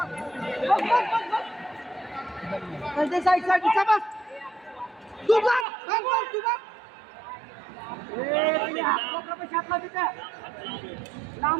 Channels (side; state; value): left; drops out; at 5.7 s